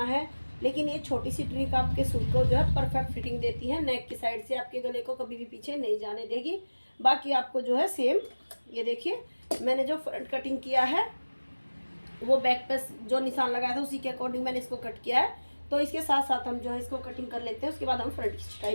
है, लेकिन ये छोटी सी ट्रिक आपके सूट को जो है परफेक्ट फिटिंग देती है, नेक की साइड से आपके गले को कभी भी पीछे नहीं जाने देगी। बाकी आपको जो है सेम, ये देखिए मैंने जो फ्रंट कटिंग किया है वो बैक पे जो निशान लगाया था उसी के अकॉर्डिंग मैंने इसको कट किया है। तो इसके साथ साथ हम जो है इसको कटिंग कर लेते हैं, उसके बाद हम फ्रंट की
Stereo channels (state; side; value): inverted; both; correlation -1.00